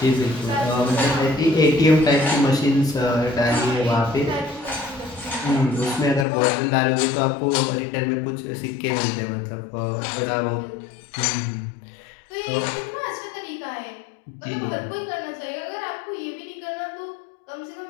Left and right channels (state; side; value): drops out; right; at 6.2 s